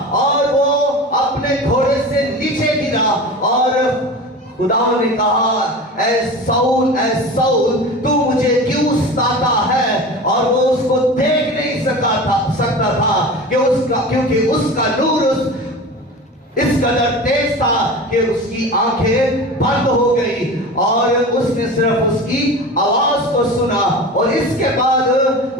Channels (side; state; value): both; normal; correlation 0.32